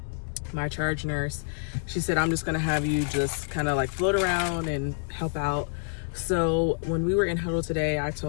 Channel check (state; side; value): silent; right; digital silence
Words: my charge nurse, she said, I'm just gonna have you just kind of like float around and help out. So when we were in huddle today, I